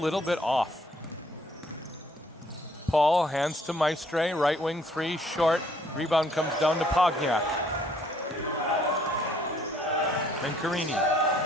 bit off. Paul hands to Maestre, right wing 3, short. Rebound comes down to Pogniak. Mencarini,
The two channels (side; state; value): both; normal; correlation 0.64